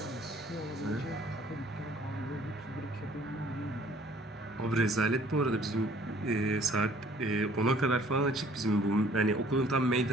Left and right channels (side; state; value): both; normal; correlation 0.57